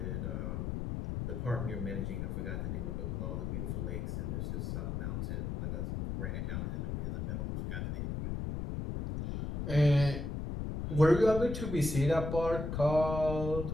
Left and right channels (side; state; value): left; noise; rumble, 3 dB below the sound